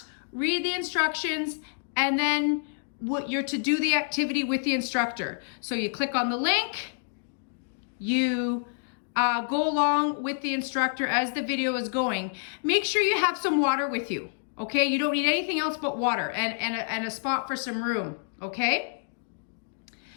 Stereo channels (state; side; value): silent; right; digital silence